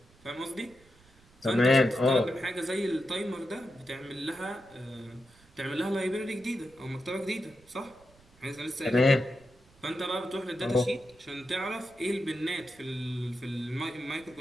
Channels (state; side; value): noise; right; rumble, 28 dB below the sound